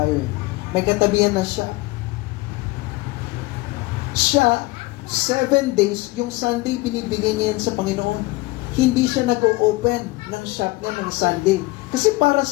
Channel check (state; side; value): quieter; right; 21.3 dB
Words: eh. May katabihan na shop. Siya, 7 days, yung Sunday, binibigay niya yan sa Panginoon. Hindi siya nag-o-open ng shop niya ng Sunday. Kasi para